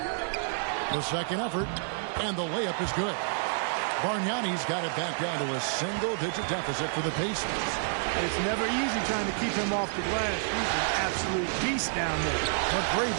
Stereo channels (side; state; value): left; silent; 58 dB below the other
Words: The second effort. And the layup is good. Bargnani's got it back down to a single-digit deficit for the Pacers. It's never easy trying to keep him off the glass. He's an absolute beast down there.